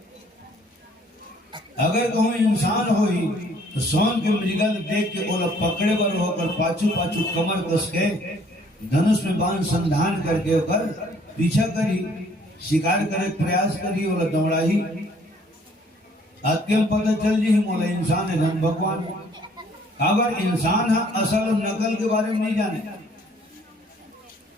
अगर कहूँ इंसान हो ही तो सोन के मृगल देख के ओला पकड़े बर होकर पाछू पाछू कमर कस के धनुष में बाण संधान करके ओकर पीछा करी, शिकार करे प्रयास करी, ओला दौड़ाही। अत्यंत पता चल जी मोला इंसान है धन भगवान। अगर इंसान है असल और नकल के बारे में नहीं जाने,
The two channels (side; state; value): both; normal; correlation 0.60